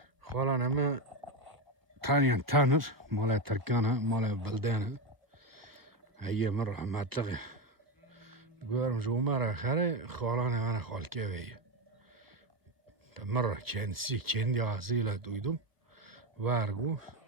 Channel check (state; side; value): late; left; 1.3 ms